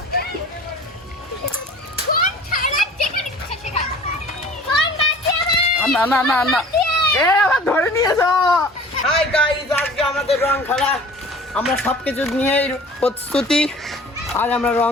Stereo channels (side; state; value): both; normal; correlation 0.45